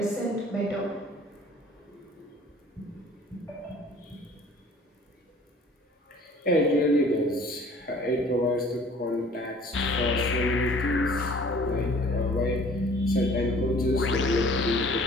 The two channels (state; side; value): normal; both; correlation 0.51